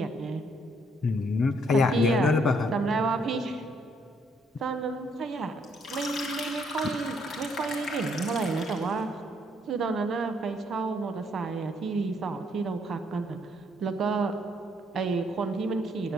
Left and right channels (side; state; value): both; normal; correlation 0.69